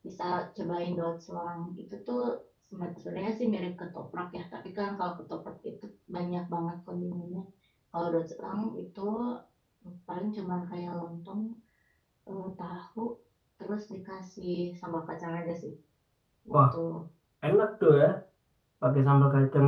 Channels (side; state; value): both; identical; correlation 1.00